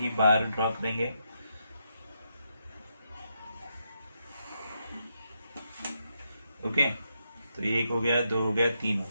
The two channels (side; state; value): both; inverted; correlation -0.81